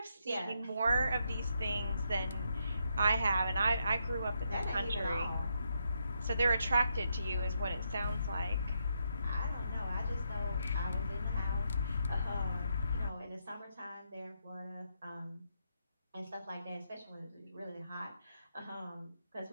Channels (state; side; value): inverted; both; correlation -0.79